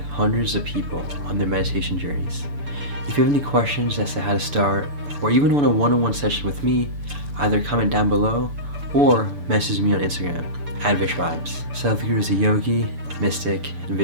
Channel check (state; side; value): late; left; 6.9 ms